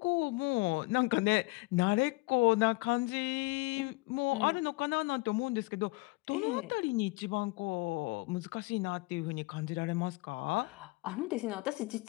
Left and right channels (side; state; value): right; quieter; 24.6 dB